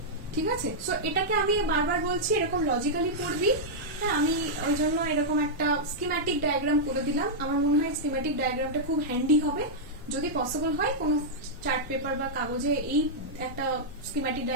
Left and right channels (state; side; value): normal; both; correlation -0.07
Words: ঠিক আছে। সো এটাকে আমি বারবার বলছি, এরকম লজিক্যালি পড়বি। হ্যাঁ, আমি ওই জন্য এরকম একটা স্কিম্যাটিক ডায়াগ্রাম করে দিলাম, আমার মনে হয় স্কিম্যাটিক ডায়াগ্রামটা খুব হ্যান্ডি হবে যদি পসিবল হয় কোনো চার্ট পেপার বা কাগজে এই একটা স্কিম্যাটিক